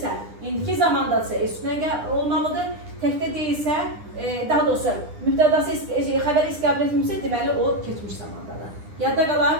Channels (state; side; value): late; left; 9.9 ms